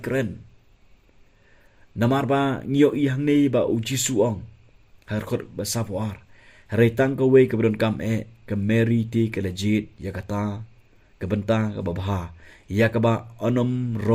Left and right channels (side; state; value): both; identical; correlation 1.00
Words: keren. Namar ba ngiyo I hang nei ba uji suong. Harkot ba sapuar. Haritang ka way kabron kam ka Mary ti ka legit ya kata ka benta ka babaha ya ka ba onom